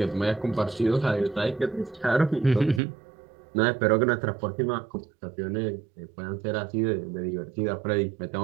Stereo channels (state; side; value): drops out; left; at 2.8 s